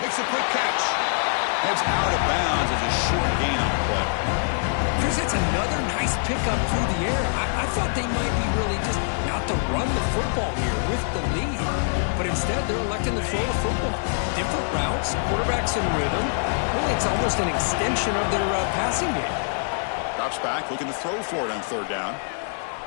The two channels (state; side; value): silent; right; digital silence